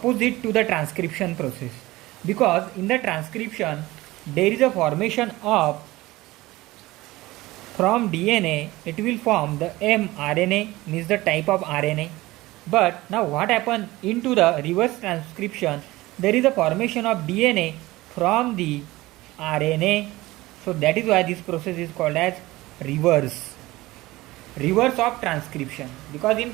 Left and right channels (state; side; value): quieter; left; 18.9 dB